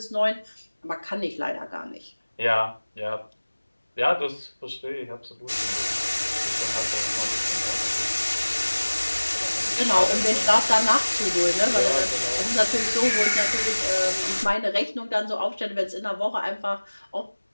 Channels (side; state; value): both; inverted; correlation -1.00